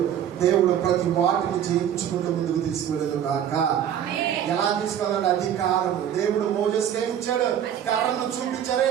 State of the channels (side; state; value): left; quieter; 9.7 dB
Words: దేవుడు ప్రతి వాటిని జయించుకుంటూ ముందుకు తీసుకువెళ్ళదు కాక. ఎలా తీసుకెళ్ళాలి? అధికారం. దేవుడు మోజెస్కి ఏమి ఇచ్చాడు? కర్రను చూపించారే